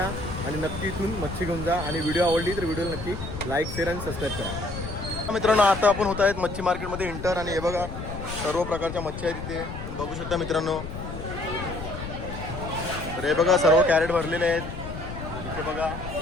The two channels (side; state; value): left; noise; rumble, 8 dB below the sound